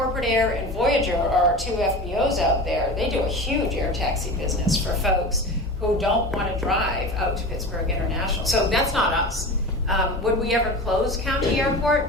Air and Voyager are two FBOs out there. They do a huge air taxi business for folks who don't want to drive out to Pittsburgh International. So that's not us. Would we ever close County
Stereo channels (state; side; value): normal; both; correlation 0.31